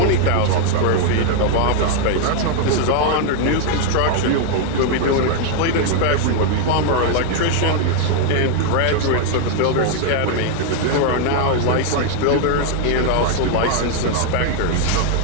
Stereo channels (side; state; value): both; different; correlation 0.00